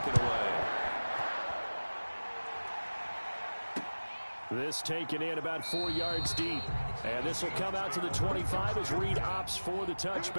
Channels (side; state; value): both; inverted; correlation -1.00